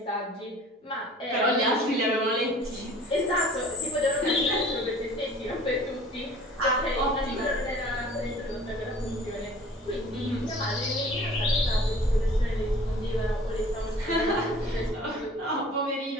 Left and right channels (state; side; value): normal; both; correlation 0.48